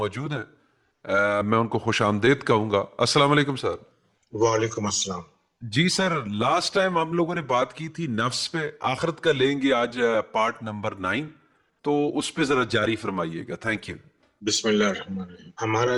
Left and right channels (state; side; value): identical; both; correlation 1.00